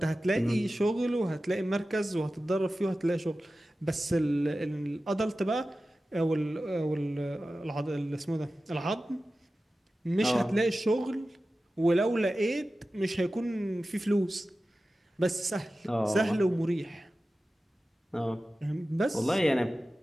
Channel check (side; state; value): both; normal; correlation 0.95